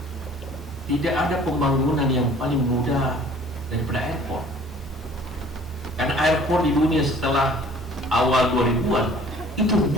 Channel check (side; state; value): both; normal; correlation 0.51